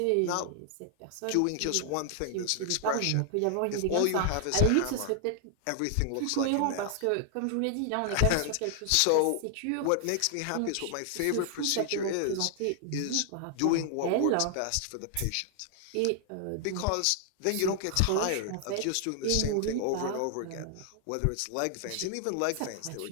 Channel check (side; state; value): both; different; correlation 0.00